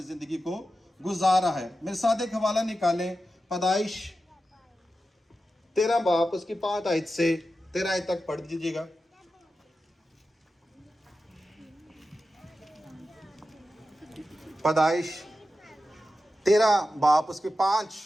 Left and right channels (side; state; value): both; normal; correlation 0.92